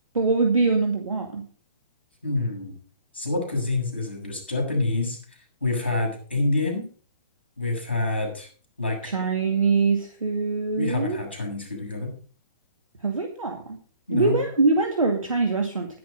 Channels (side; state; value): both; inverted; correlation -0.64